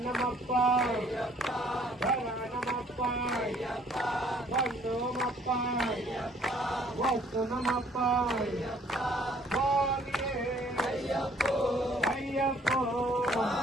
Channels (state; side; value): normal; both; correlation 0.60